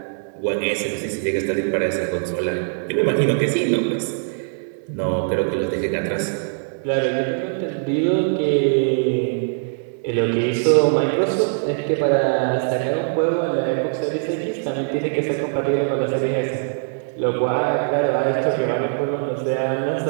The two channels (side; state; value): left; silent; digital silence